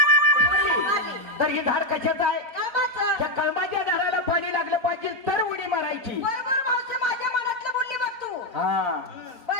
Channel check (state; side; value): late; left; 4.4 ms